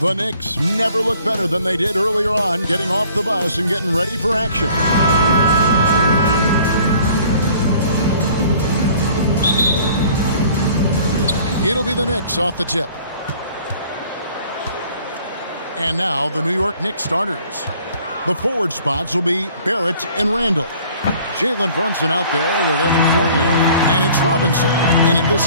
The Knicks never look better than they did earlier on, getting off the bus and getting ready for action. It'll be the Knicks off the tip. And now the New York Knicks starters. The forward spots will be Barrett and Randle. Jalen Brunson out there with Evan Fournier, and it's Robinson in at the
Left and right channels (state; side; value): inverted; both; correlation -0.54